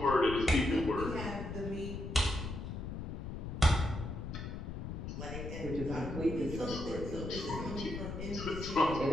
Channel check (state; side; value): noise; left; rumble, 6 dB below the sound